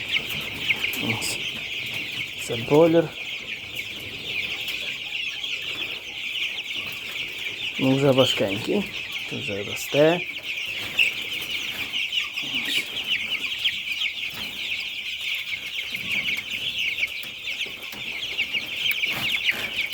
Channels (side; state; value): both; identical; correlation 1.00